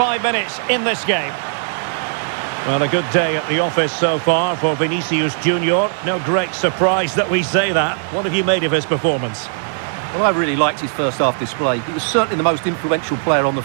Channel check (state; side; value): silent; left; digital silence